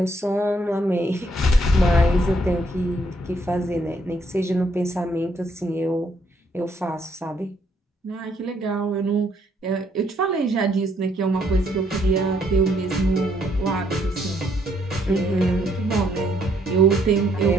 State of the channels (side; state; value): both; normal; correlation 0.70